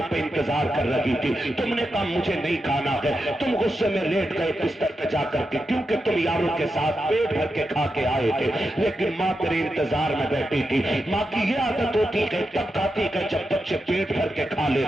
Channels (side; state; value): both; normal; correlation 0.88